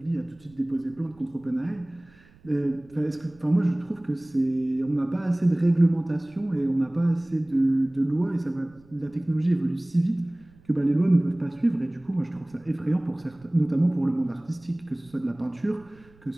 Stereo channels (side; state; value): right; noise; rumble, 27 dB below the sound